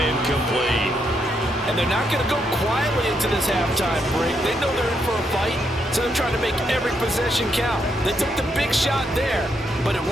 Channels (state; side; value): normal; both; correlation 0.78